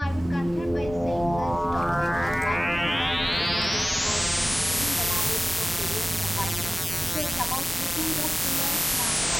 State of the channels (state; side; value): normal; both; correlation 0.97